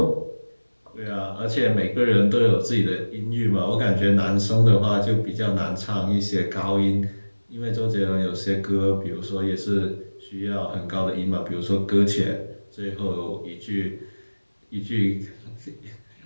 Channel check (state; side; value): inverted; both; correlation -1.00